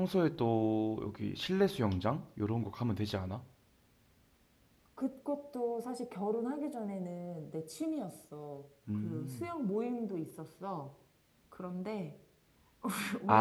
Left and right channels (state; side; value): identical; both; correlation 1.00